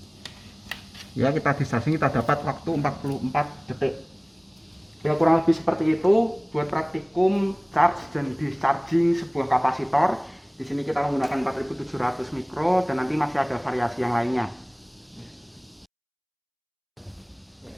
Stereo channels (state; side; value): identical; both; correlation 1.00